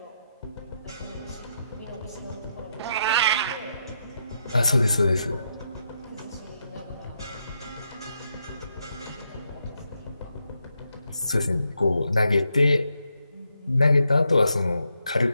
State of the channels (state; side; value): inverted; both; correlation -0.81